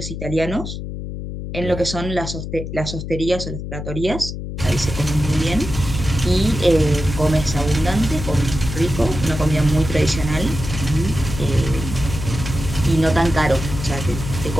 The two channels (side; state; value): left; noise; hum, 7 dB below the sound